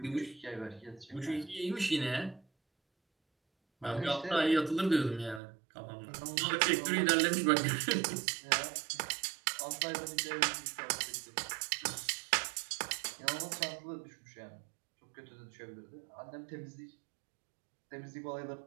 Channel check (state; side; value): drops out; left; at 5.4 s